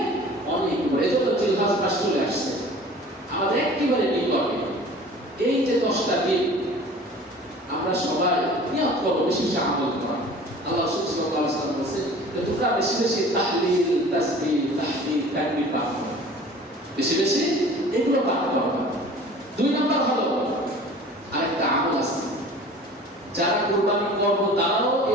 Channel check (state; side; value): normal; both; correlation 0.44